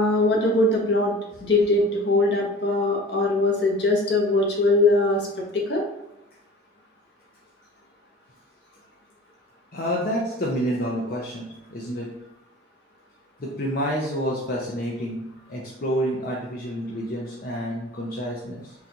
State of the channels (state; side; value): normal; both; correlation 0.42